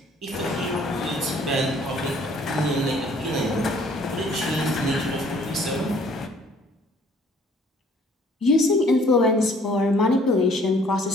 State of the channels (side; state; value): both; normal; correlation 0.58